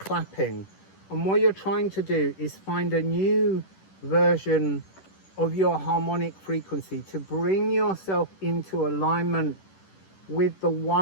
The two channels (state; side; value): late; right; 10 ms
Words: And what you're trying to do is find a new version of your harmonic frequency to bring yourself into alignment with the